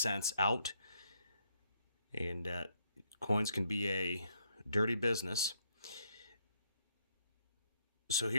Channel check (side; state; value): both; inverted; correlation -0.73